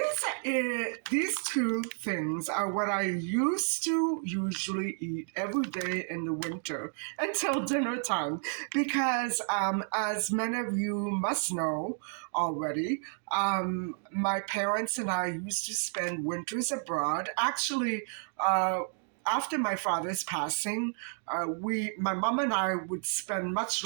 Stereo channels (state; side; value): silent; left; 57 dB below the other